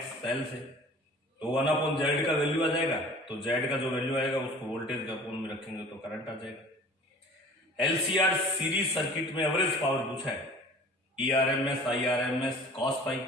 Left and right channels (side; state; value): both; normal; correlation 0.44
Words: एल से, तो 1/z का वैल्यू आ जाएगा। तो z का जो वैल्यू आएगा उसको वोल्टेज के अपोन में रखेंगे तो करंट आ जाएगा। एलसीआर सीरीज सर्किट में एवरेज पावर पूछा है, ERMS IRMS cos पाई।